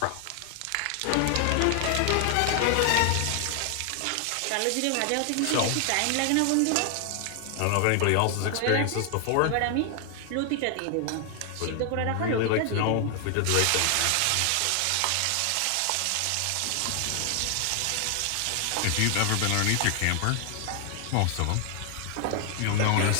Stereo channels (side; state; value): both; different; correlation 0.00